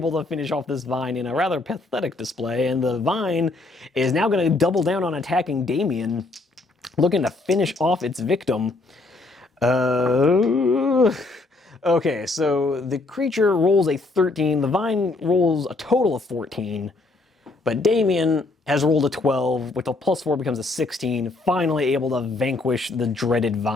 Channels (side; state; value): right; quieter; 3.2 dB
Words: to finish off this Vine in a rather pathetic display, and the Vine is now going to double down on attacking Damien, looking to finish off its victim. Okay, so the creature rolls a 13, the Vine rolls a total of 14, but Damien has rolled a 12, with a +4 becomes a 16, finally able to vanquish the dreaded